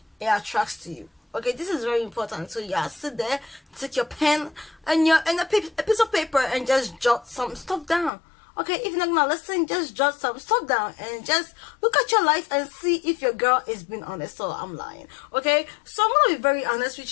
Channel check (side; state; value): right; drops out; at 8.1 s